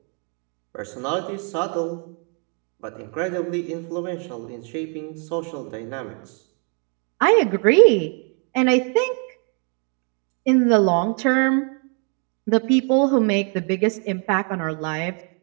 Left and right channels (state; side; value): quieter; left; 39.5 dB